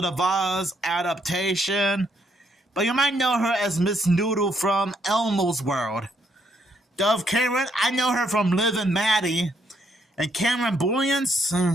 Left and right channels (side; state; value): both; normal; correlation 0.73